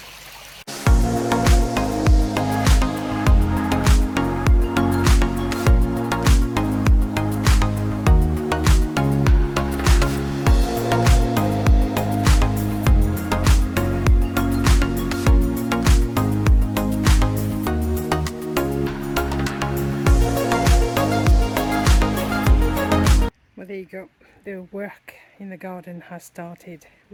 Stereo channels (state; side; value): identical; both; correlation 1.00